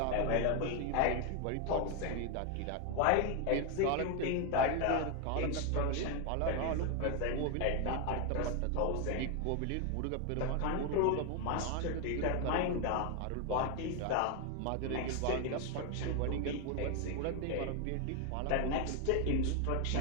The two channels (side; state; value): both; different; correlation 0.01